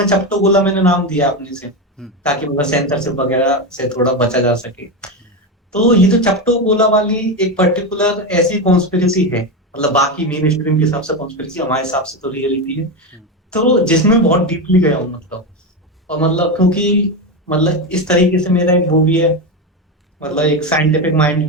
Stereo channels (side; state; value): both; normal; correlation 0.14